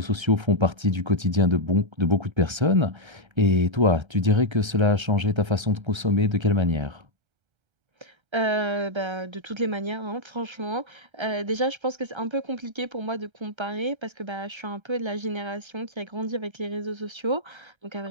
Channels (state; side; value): late; left; 1.3 ms